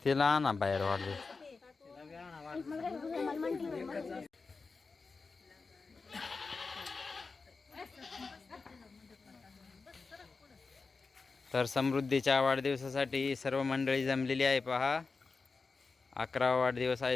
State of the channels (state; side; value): quieter; right; 4.3 dB